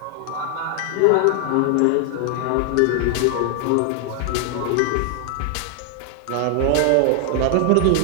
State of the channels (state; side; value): different; both; correlation 0.00